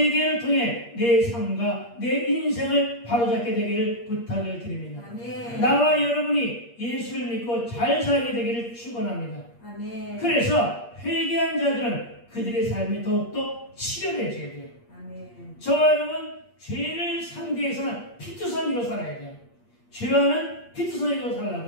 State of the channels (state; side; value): late; right; 8.5 ms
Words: 통해 내 삶과 내 인생을 바로잡게 되기를 부탁을 드립니다. 아멘. 나와 여러분이 예수를 믿고 잘 살게 되기를 축원합니다. 아멘. 그래서 회개한 자들은 그들의 삶이 더욱더 치료되어야 돼요. 아멘. 저와 여러분, 죄를 상대해서는 피투성이로 살아야 돼요. 죄와는 피투성이로